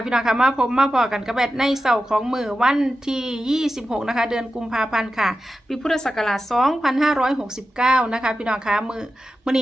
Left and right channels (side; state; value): both; normal; correlation 0.92